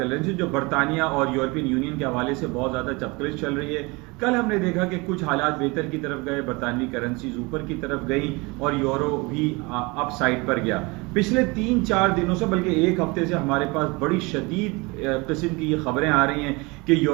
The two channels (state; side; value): quieter; left; 26.0 dB